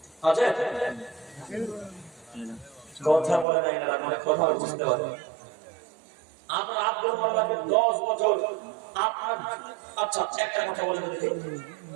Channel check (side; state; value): left; drops out; at 3.5 s